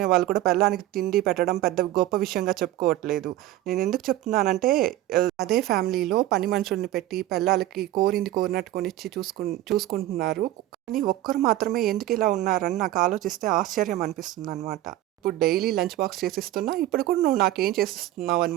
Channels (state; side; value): quieter; left; 14.8 dB